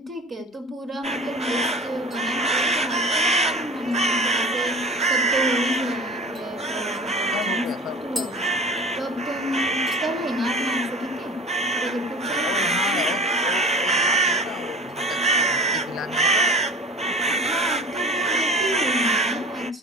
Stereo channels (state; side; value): normal; both; correlation 0.37